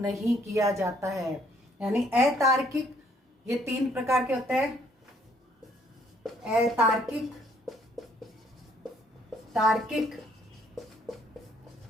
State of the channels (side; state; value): both; normal; correlation 0.65